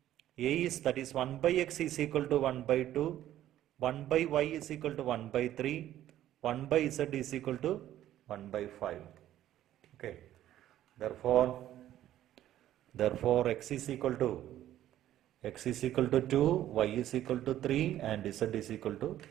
A is, that is 1 by X is equal to 1 by 2, 1 by Y is equal to 1 by 3, 1 by Z is equal to 1 by 5. Okay. Therefore X is equal to 2, Y is equal to 3 and Z is equal to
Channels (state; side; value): quieter; left; 12.6 dB